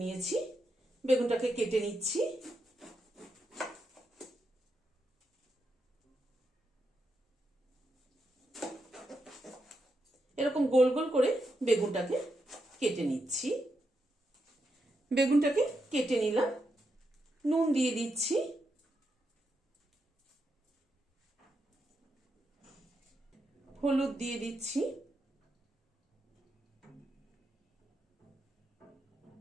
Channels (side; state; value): both; normal; correlation 0.84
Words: নিয়েছি, বেগুনটাকে কেটে নিচ্ছি। এরকম গোল গোল করে বেগুনটাকে কেটে নিচ্ছি। বেগুনটাকে কেটে নিলাম, নুন দিয়ে দিচ্ছি, হলুদ দিয়ে দিচ্ছি,